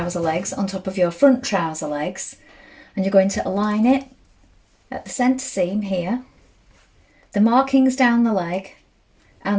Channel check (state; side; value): identical; both; correlation 1.00